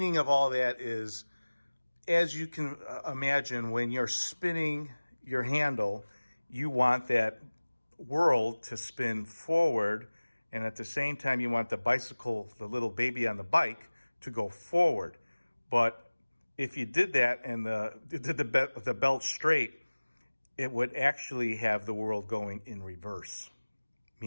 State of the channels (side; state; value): both; inverted; correlation -1.00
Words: of all that is, as you can imagine, when you're spinning your handle, you want that world to spin forward, and at the same time you want the bicycle, the little baby on the bike, to go forward. But if you did that and did the belt straight, it would actually have the world going in reverse,